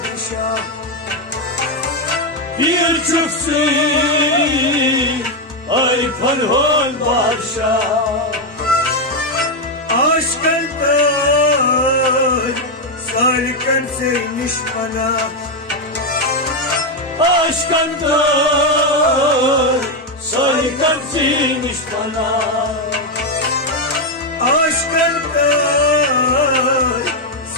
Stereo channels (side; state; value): both; normal; correlation 0.04